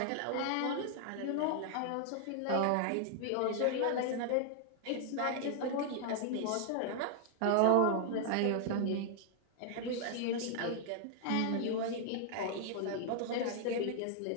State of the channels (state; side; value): different; both; correlation 0.00